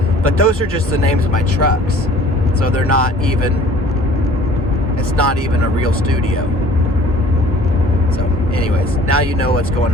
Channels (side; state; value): both; normal; correlation 0.51